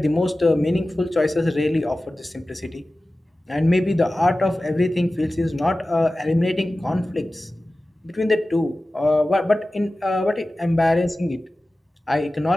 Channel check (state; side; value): normal; both; correlation 0.96